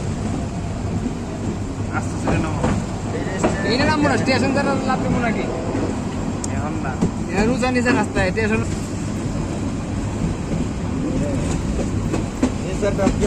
আস্তে আস্তে নামো। এইটা নামবো না স্টেশন দ্বারা লাভ দেবো নাকি এখন না রুচা নিচে রাস্তায় স্টেশন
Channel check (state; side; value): identical; both; correlation 1.00